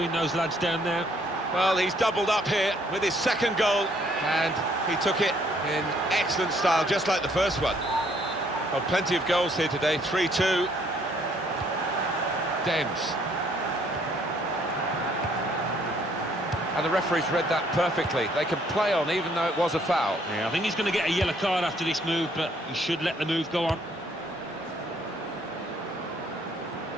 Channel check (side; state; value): both; normal; correlation 0.65